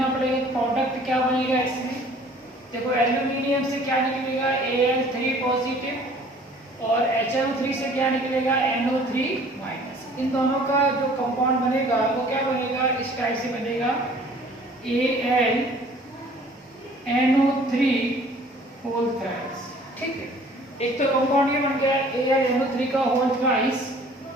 पड़ेगा। प्रोडक्ट क्या बनेगा इसमें? देखो, एल्यूमिनियम से क्या निकलेगा? Al3 पॉजिटिव, और HNO3 से क्या निकलेगा? NO3 minus. इन दोनों का जो कंपाउंड बनेगा वो क्या बनेगा? इस टाइप से बनेगा AlNO3 होल थ्राइस। ठीक है, एक तो कंपाउंड ये बन गया AlNO3 का होल थ्राइस,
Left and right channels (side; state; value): both; normal; correlation 0.52